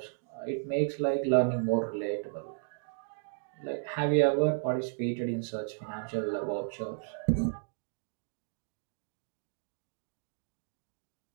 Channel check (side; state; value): left; silent; digital silence